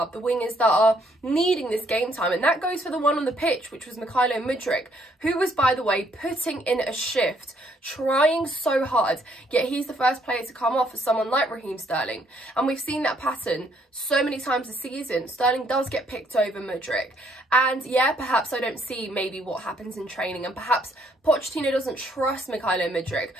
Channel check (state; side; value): normal; both; correlation 0.68